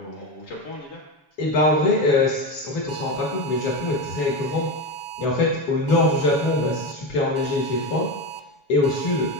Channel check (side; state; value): right; late; 7.0 ms